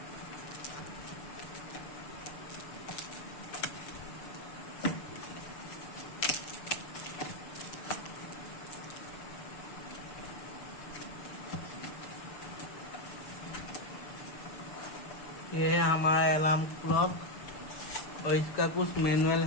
ये है हमारा अलार्म क्लॉक और इसका कुछ मैनुअल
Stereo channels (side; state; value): right; late; 6.8 ms